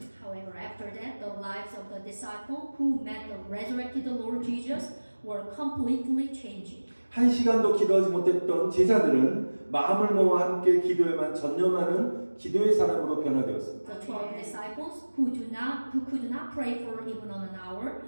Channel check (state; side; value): inverted; both; correlation -1.00